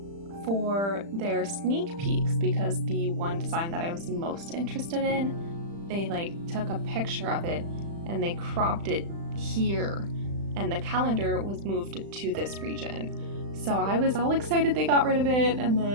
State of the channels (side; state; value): left; late; 35 ms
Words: for their sneak peeks because the one design that I was most interested in, they took a picture of it and they cropped it here, and the calendar was moved to this region. So I was all excited they got rid of it, and